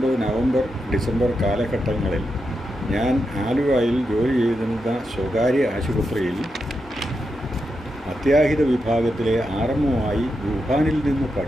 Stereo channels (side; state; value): both; normal; correlation 0.86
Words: നവംബർ ഡിസംബർ കാലഘട്ടങ്ങളിൽ ഞാൻ ആലുവയിൽ ജോലി ചെയ്തിരുന്ന സ്വകാര്യ ആശുപത്രിയിൽ അത്യാഹിത വിഭാഗത്തിലെ ആർഎംഒയായി വുഹാനിൽ നിന്ന്